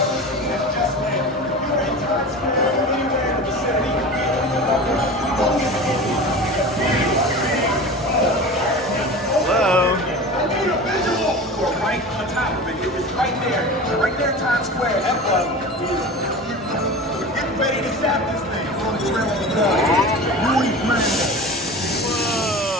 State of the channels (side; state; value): both; normal; correlation 0.33